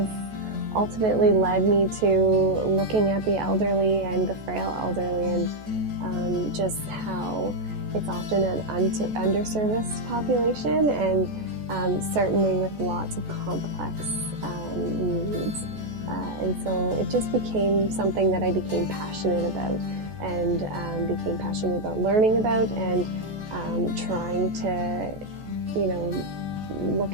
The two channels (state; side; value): late; left; 14 ms